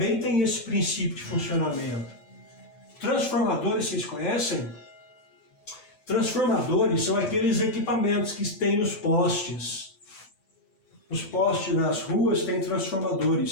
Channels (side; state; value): right; late; 9.0 ms